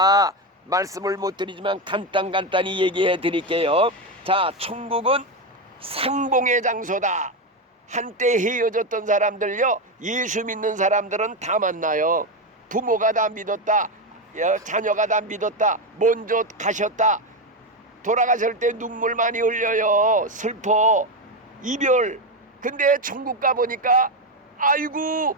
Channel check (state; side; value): normal; both; correlation 0.11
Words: 말씀을 못 드리지만 간단히 얘기해 드릴게요. 자, 천국은 상봉의 장소다. 한때 헤어졌던 사람들요 예수 믿는 사람들은 다 만나요. 부모가 다 믿었다, 자녀가 다 믿었다, 먼저 가셨다. 돌아가실 때 눈물 많이 흘려요. 슬퍼, 이별. 근데 천국 가보니까 아이고